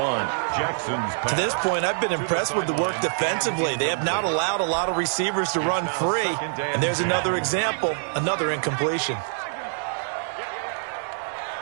To this point, I've been impressed with the work defensively. They have not allowed a lot of receivers to run free, and there's another example, another incompletion.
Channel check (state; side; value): silent; left; digital silence